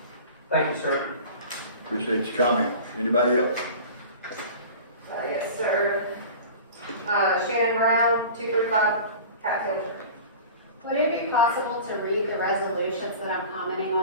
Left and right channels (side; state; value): both; inverted; correlation -0.39